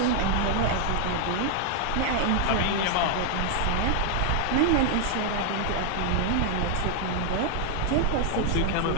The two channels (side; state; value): both; different; correlation 0.00